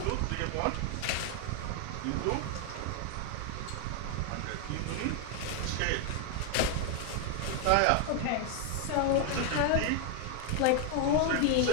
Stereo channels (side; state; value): both; different; correlation 0.00